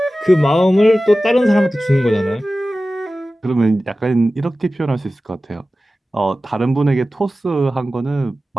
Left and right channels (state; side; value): normal; both; correlation 0.95